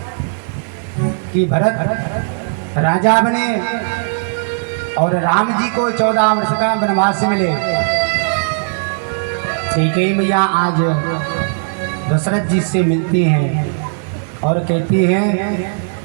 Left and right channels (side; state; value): left; silent; digital silence